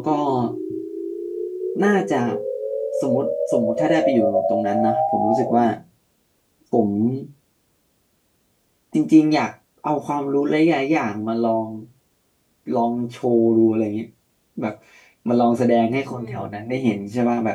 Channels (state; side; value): identical; both; correlation 1.00